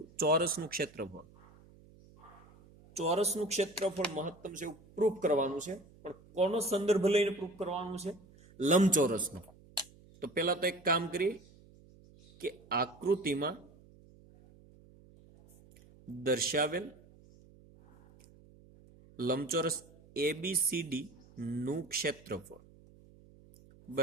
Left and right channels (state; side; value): noise; right; hum, 25 dB below the sound